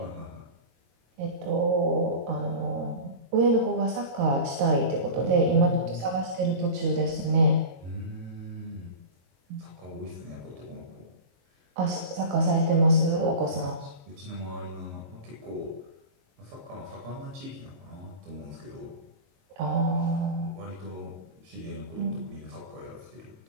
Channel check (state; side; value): late; left; 22 ms